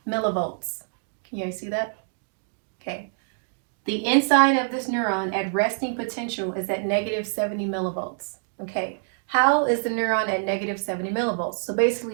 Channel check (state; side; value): silent; left; digital silence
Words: millivolts. Can you guys see that? Okay. The inside of this neuron at resting potential is at negative 70 millivolts. Okay. How is the neuron at negative 70 millivolts? So